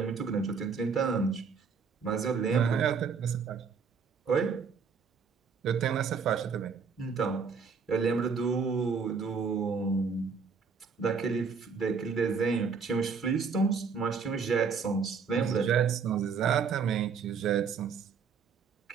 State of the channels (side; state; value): left; quieter; 5.6 dB